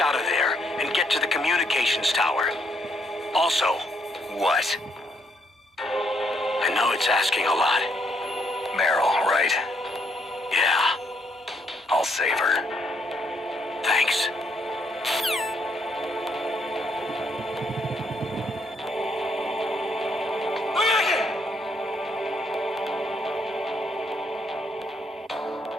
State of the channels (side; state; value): both; normal; correlation 0.73